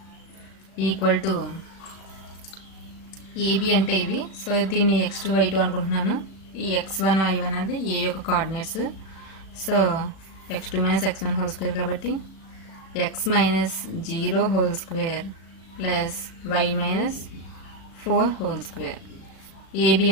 equal to AB అంటే ఇవి. సో దీన్ని x2 y2 అనుకుంటున్నాను. ఈ x1 y1 అది ఏ యొక్క coordinates. So x2 - x1 whole square కాబట్టి x - 0 whole square plus y - 4 whole square. AB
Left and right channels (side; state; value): right; late; 36 ms